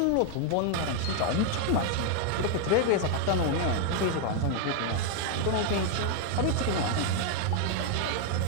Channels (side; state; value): both; different; correlation 0.01